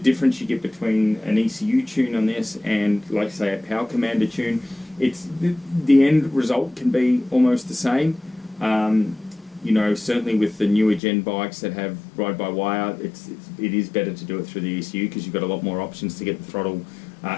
difference you get between an ECU tune on this and, like say, a Power Commander tune, it's the end result can be almost the same. Certainly with the newer gen bikes that have ride-by-wire, it is better to do it through the ECU, because you've got a lot more options to get the throttle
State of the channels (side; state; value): right; drops out; at 11.0 s